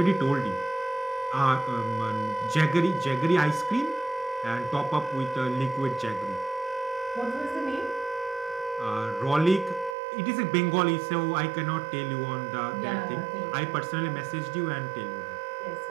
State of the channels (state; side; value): drops out; left; at 10.0 s